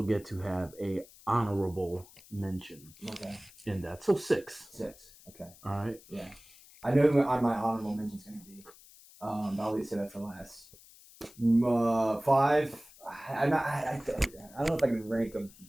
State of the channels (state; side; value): noise; left; hiss, 23 dB below the sound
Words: get to have a honorable mention. Okay. In that, so 6. 6. Okay. All right. Yeah. I know what my honorable mention is going to be. But I'll leave that for last. 5. I don't know if I can rank them,